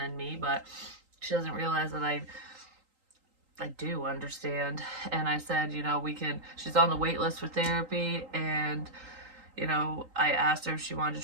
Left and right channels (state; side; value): late; left; 3.8 ms